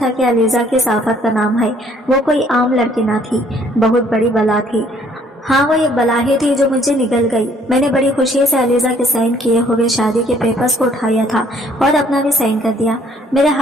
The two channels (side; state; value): both; normal; correlation 0.61